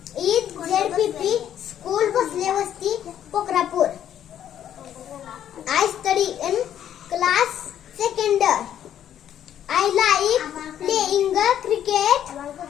is ZPP School Baslevasti, Pokrapur. I study in class 2nd. I like playing cricket.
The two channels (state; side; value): quieter; right; 10.3 dB